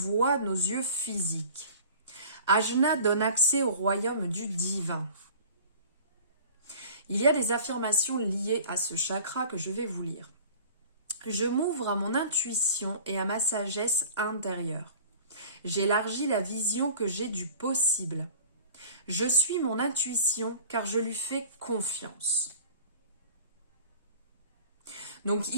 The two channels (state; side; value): inverted; both; correlation -0.43